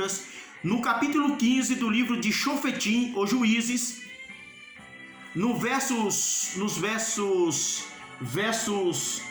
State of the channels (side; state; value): both; identical; correlation 1.00